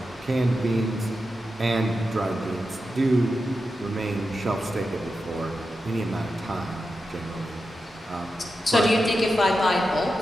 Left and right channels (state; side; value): normal; both; correlation 0.90